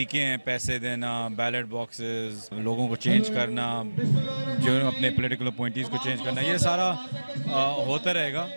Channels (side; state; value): both; inverted; correlation -1.00